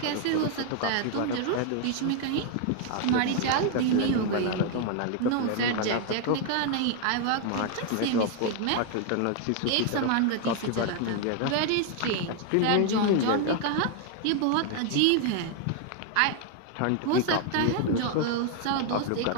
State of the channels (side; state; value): both; different; correlation 0.00